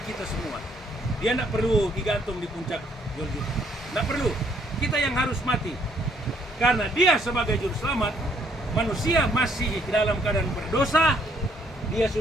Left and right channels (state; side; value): normal; both; correlation 0.67